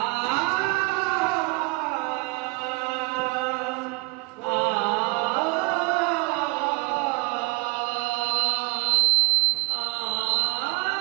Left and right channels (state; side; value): quieter; left; 27.5 dB